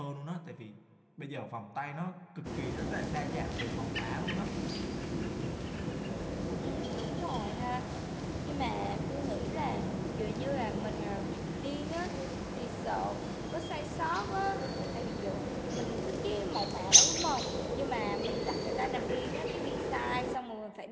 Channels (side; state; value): both; identical; correlation 1.00